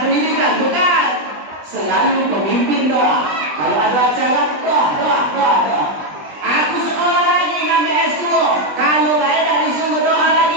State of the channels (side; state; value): left; late; 20 ms